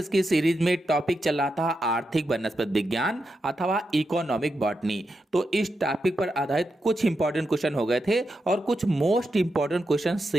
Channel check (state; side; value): normal; both; correlation 0.86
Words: की series में topic चल रहा था आर्थिक वनस्पति विज्ञान अथवा इकोनॉमिक बॉटनी। तो इस टॉपिक पर आधारित कुछ इंपॉर्टेंट क्वेश्चन हो गए थे और कुछ मोस्ट इंपॉर्टेंट क्वेश्चन